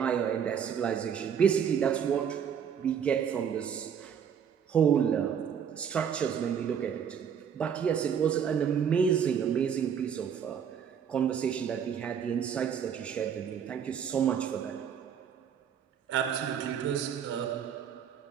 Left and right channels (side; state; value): left; quieter; 7.9 dB